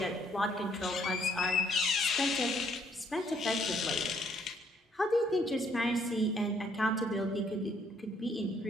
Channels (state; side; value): normal; both; correlation 0.67